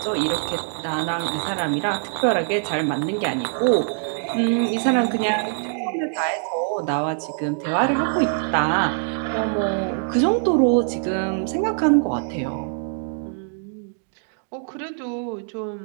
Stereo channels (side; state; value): left; silent; digital silence